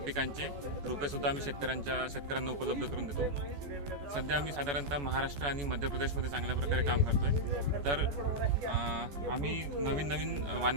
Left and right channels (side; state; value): left; late; 14 ms